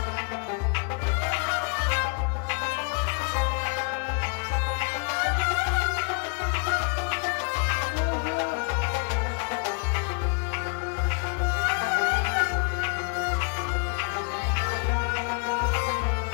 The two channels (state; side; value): quieter; right; 36.8 dB